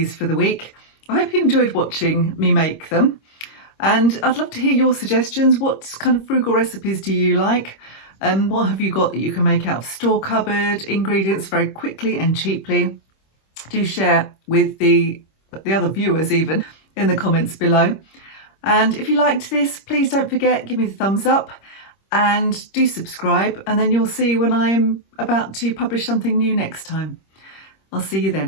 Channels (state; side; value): late; right; 26 ms